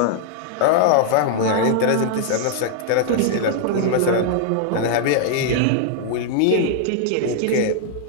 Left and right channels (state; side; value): different; both; correlation -0.01